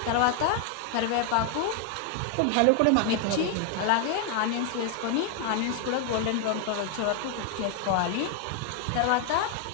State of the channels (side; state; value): both; different; correlation 0.00